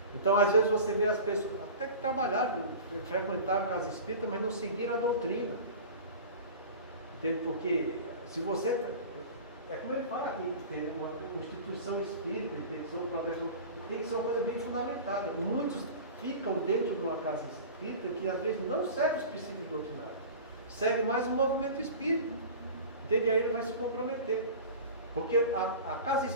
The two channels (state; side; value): inverted; both; correlation -0.36